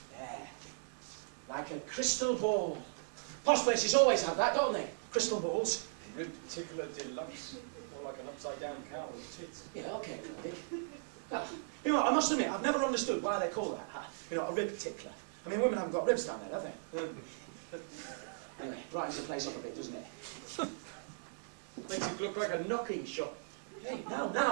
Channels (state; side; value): silent; left; digital silence